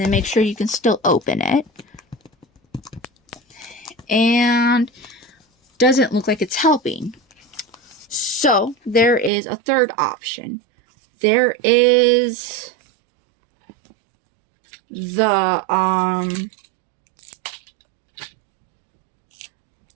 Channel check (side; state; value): left; drops out; at 9.3 s